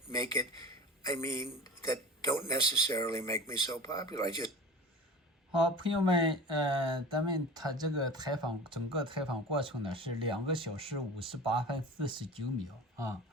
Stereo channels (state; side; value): normal; both; correlation 0.36